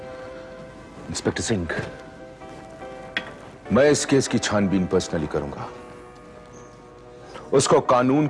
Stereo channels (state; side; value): identical; both; correlation 1.00